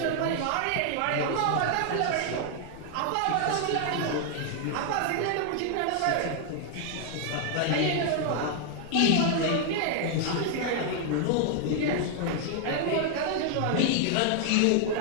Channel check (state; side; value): different; both; correlation 0.00